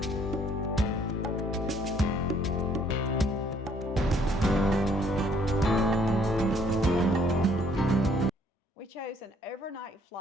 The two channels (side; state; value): both; normal; correlation 0.63